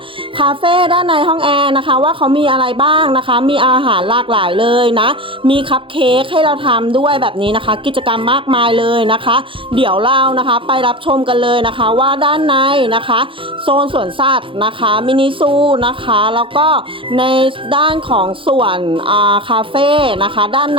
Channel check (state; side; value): late; left; 0.25 ms